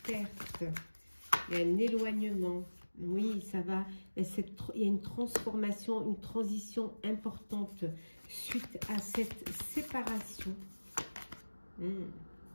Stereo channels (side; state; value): both; inverted; correlation -1.00